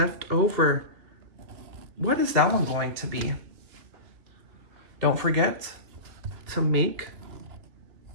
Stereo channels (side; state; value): left; late; 2.8 ms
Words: over. What is that one going to be? Don't forget to make